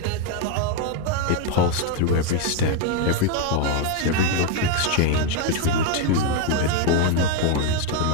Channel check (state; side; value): different; both; correlation 0.01